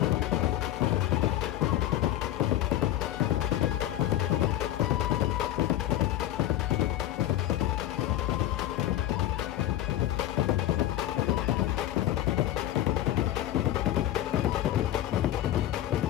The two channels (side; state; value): right; quieter; 13.3 dB